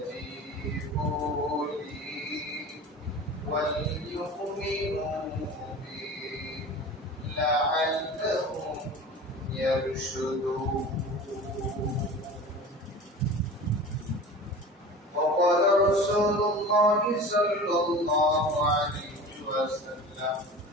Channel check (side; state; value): both; normal; correlation 0.36